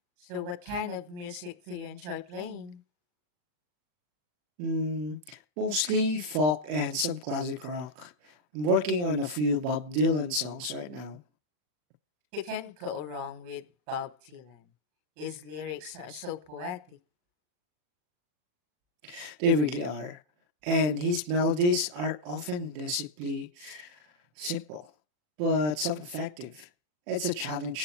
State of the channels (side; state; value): left; late; 40 ms